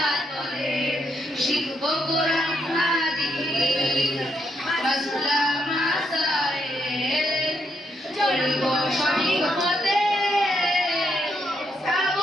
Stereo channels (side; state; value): both; normal; correlation 0.77